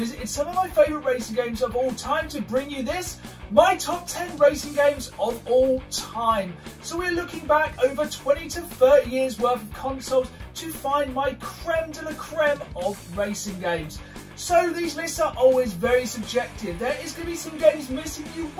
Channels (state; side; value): identical; both; correlation 1.00